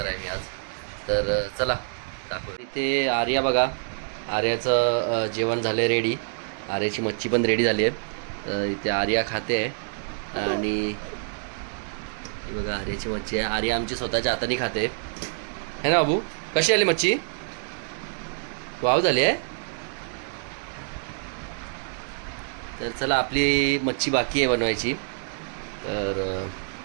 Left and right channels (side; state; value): left; silent; digital silence